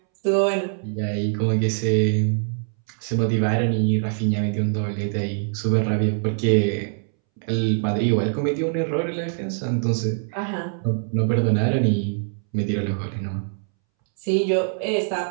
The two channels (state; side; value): silent; left; 63 dB below the other